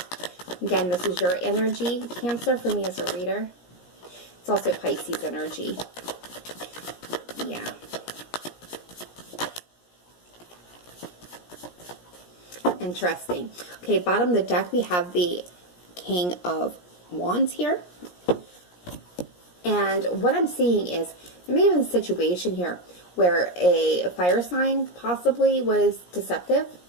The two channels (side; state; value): right; late; 17 ms